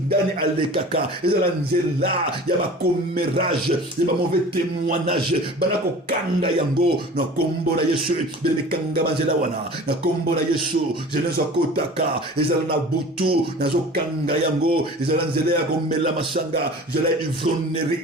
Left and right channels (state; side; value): normal; both; correlation 0.41